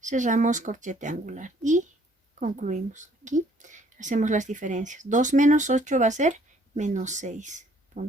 Cerramos corchete angular y concluimos. Aquí hacemos las diferencias. 2 menos 8 va a ser menos 6.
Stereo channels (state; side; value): normal; both; correlation 0.62